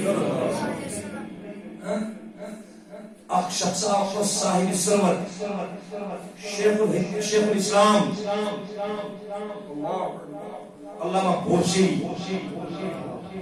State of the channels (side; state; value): both; identical; correlation 1.00